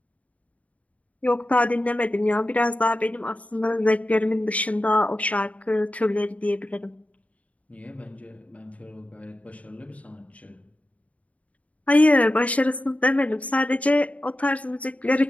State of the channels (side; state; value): right; late; 0.068 ms